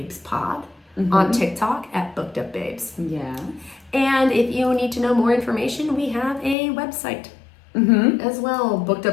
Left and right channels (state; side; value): drops out; right; at 6.6 s